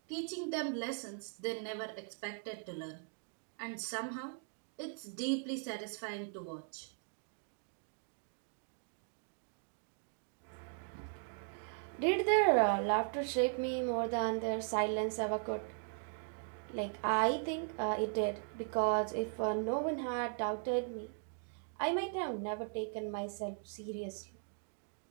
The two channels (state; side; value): silent; left; 52 dB below the other